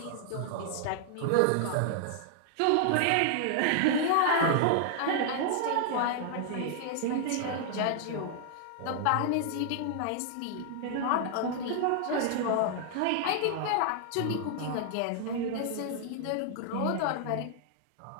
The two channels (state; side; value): different; both; correlation -0.01